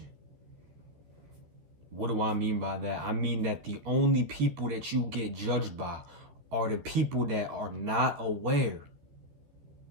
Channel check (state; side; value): late; left; 14 ms